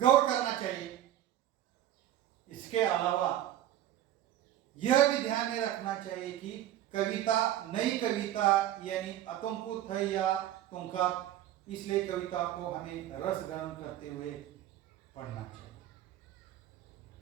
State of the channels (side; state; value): left; quieter; 12.6 dB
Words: करना चाहिए। इसके अलावा यह भी ध्यान में रखना चाहिए कि कविता नई कविता यानी अतुंकुत है या तुंका, इसलिए कविता को हमें रस ग्रहण करते हुए पढ़ना चाहिए।